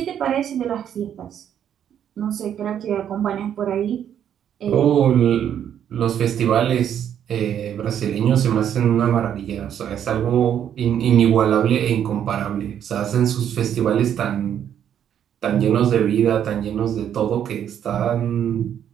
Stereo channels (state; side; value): quieter; left; 9.5 dB